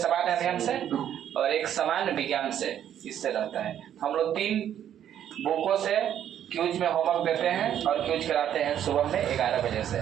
अध्ययन से और एक सामान्य विज्ञान से इससे रहता है। हम लोग 3 बुकों से क्यूज में होमवर्क देते हैं और क्यूज कराते हैं सुबह में 11 बजे से।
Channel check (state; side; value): quieter; left; 10.2 dB